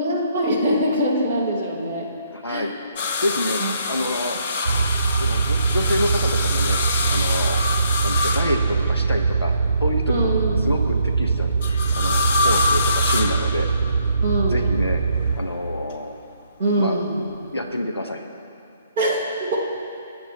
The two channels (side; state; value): both; inverted; correlation -0.71